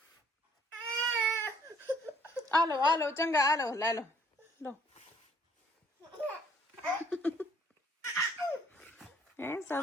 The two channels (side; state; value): both; normal; correlation 0.62